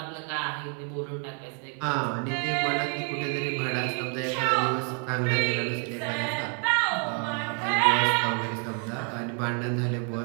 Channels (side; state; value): left; quieter; 39.4 dB